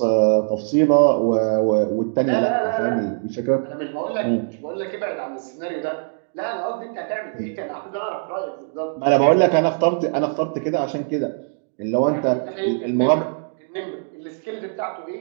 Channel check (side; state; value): left; silent; digital silence